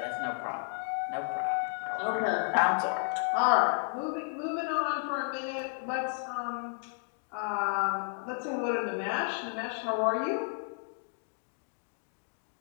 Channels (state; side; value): silent; right; 56 dB below the other